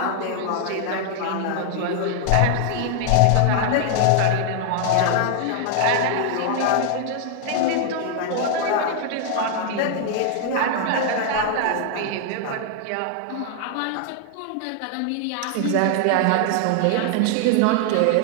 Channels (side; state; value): both; different; correlation 0.00